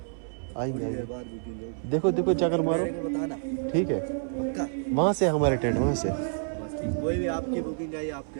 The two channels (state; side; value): silent; left; 58 dB below the other